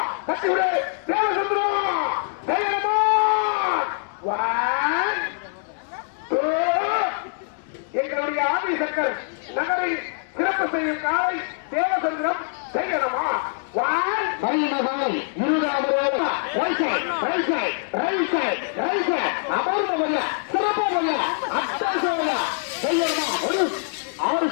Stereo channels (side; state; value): right; silent; digital silence